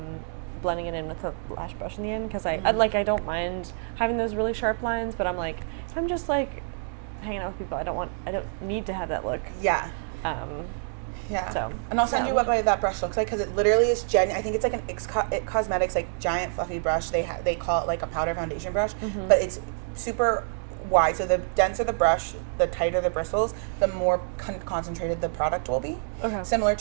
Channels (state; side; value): silent; left; digital silence